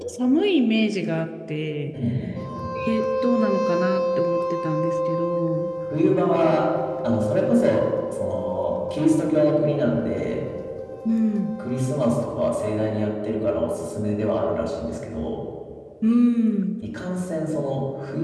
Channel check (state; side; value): identical; both; correlation 1.00